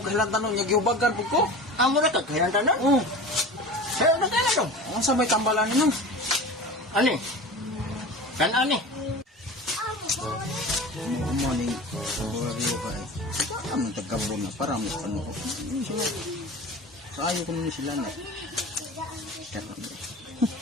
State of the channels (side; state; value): both; normal; correlation 0.34